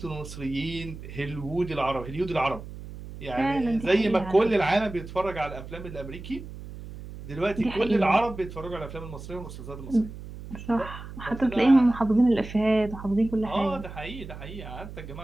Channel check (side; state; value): right; noise; hum, 12 dB below the sound